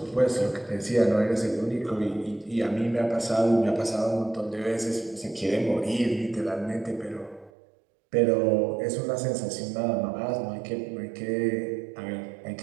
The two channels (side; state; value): left; drops out; at 7.5 s